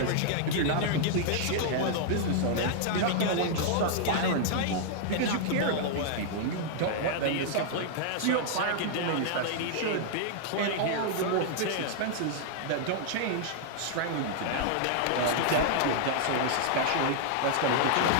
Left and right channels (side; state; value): both; different; correlation -0.01